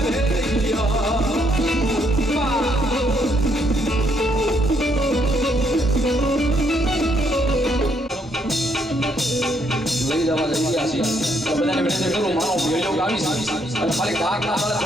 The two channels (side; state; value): both; normal; correlation 0.72